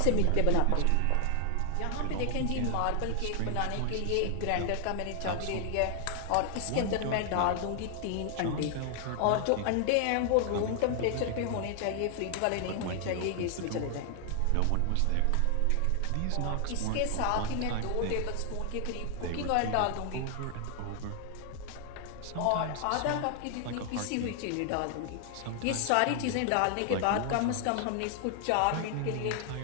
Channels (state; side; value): different; both; correlation 0.00